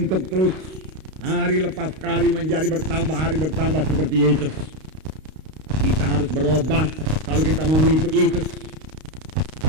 terus hari lepas hari menjadi bertambah, hari bertambah seperti Yesus. Kita harus berubah kalau kita mau mengikut Yesus.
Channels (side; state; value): left; late; 32 ms